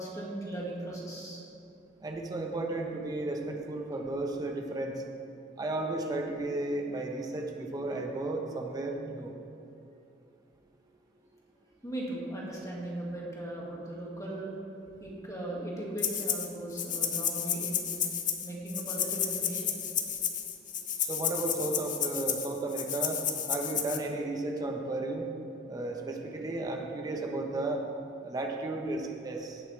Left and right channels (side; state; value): both; normal; correlation 0.35